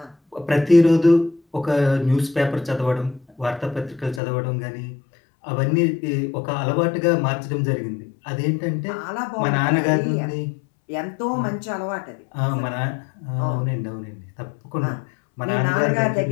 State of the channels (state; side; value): drops out; right; at 4.2 s